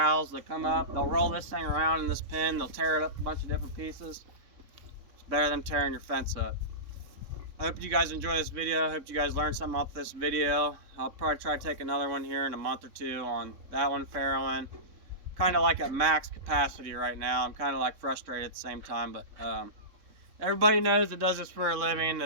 They come up, they'll roll this thing around in this pen, they'll tear it up a bunch of different pieces. It's better than tearing your fence up. I hope you guys enjoy this video. I hope you guys learned something off this video. I'll probably try to take another one here in a month or 2 on that one farrowing. Kind of like at max capacity right now. I'm kind of like frustrated at the same time, but everybody knows that does this for a living.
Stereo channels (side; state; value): left; late; 3.7 ms